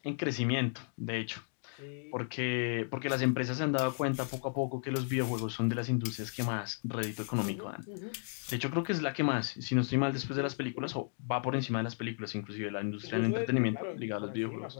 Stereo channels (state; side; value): silent; right; digital silence